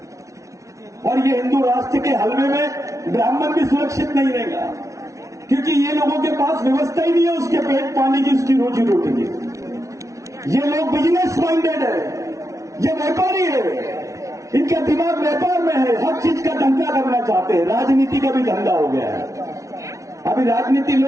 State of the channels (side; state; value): left; late; 0.15 ms